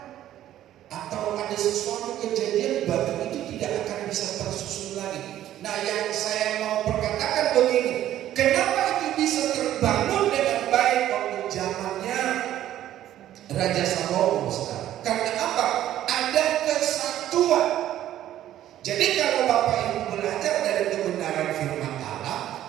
atau ada sesuatu kejadian, batu itu tidak akan bisa tersusun lagi. Nah, yang saya mau perkatakan begini, kenapa itu bisa terbangun dengan baik waktu zamannya Raja Salomo, saudara? Karena apa? Ada kesatuan. Jadi kalau Bapak Ibu belajar dari kebenaran firman Allah,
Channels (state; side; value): quieter; left; 12.5 dB